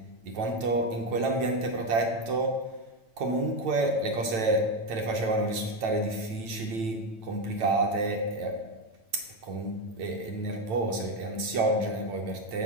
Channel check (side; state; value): left; late; 9.0 ms